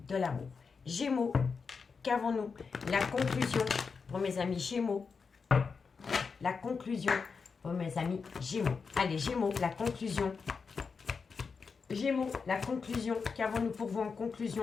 de l'amour. Gémeaux, qu'avons-nous? La conclusion pour mes amis Gémeaux. La conclusion pour mes amis Gémeaux. Allez, Gémeaux, la conclusion. Gémeaux, la conclusion. Qu'avons-nous pour vous en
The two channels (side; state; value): right; quieter; 5.2 dB